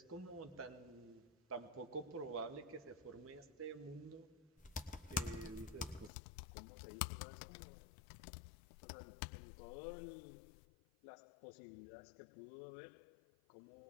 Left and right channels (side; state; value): right; drops out; at 6.1 s